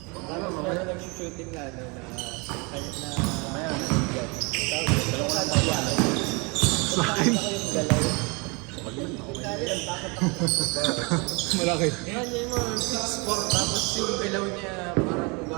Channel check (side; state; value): left; quieter; 29.8 dB